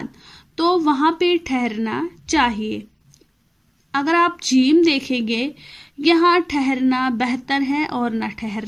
तो वहां पे ठहरना चाहिए। अगर आप जीम देखेंगे, यहाँ ठहरना बेहतर है और न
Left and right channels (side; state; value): both; identical; correlation 1.00